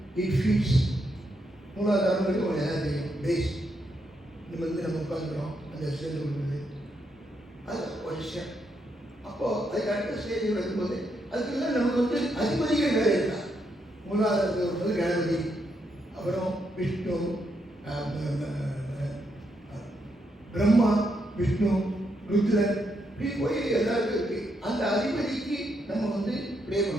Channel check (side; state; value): both; normal; correlation 0.79